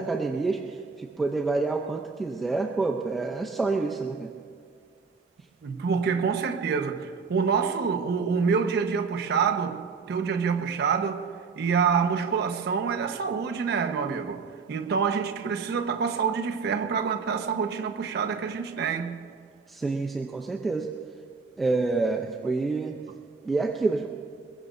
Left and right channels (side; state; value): left; quieter; 4.9 dB